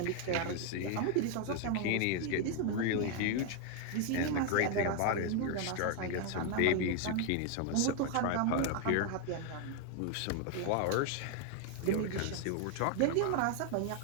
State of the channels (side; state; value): both; different; correlation 0.01